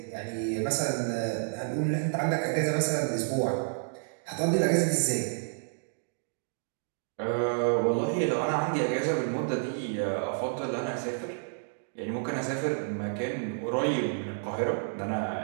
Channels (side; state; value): left; silent; digital silence